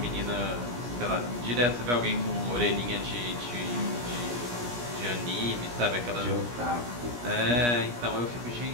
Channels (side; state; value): left; late; 17 ms